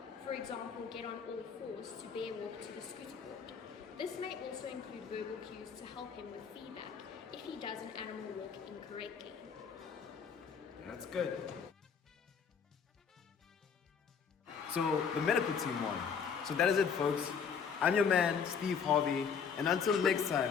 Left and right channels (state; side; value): quieter; right; 6.6 dB